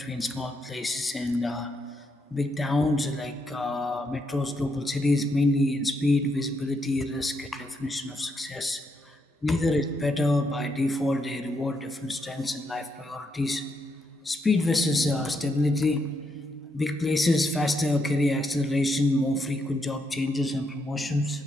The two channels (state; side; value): normal; both; correlation 0.78